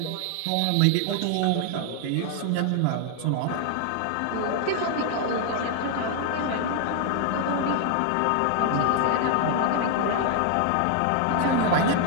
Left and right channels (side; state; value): both; different; correlation 0.00